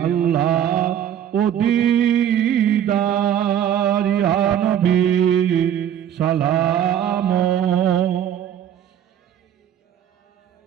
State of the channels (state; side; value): quieter; left; 10.0 dB